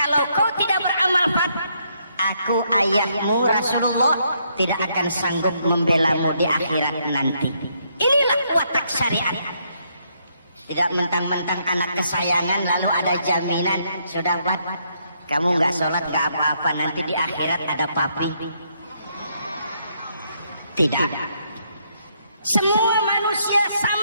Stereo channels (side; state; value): both; inverted; correlation -0.74